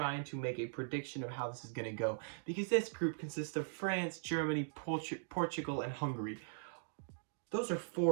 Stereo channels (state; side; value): silent; left; digital silence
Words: to make a prediction of how this is going to go. Because this group consists of France, Germany, Portugal, and Hungary. Those are